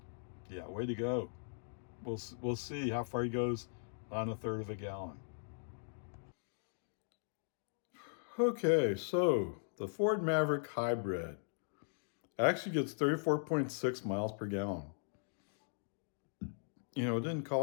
Yeah, way to go. We'll see how far he goes on 1/3 of a gallon. Okay, so the Ford Maverick Hybrid actually gets 34.6 miles per gallon. You know, it didn't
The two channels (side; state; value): right; silent; digital silence